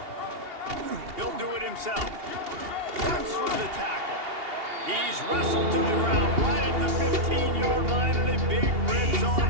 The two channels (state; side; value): late; left; 2.8 ms